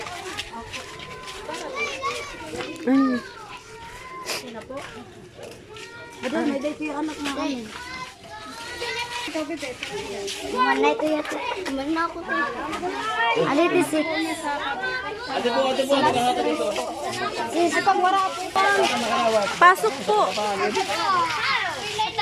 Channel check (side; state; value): both; identical; correlation 1.00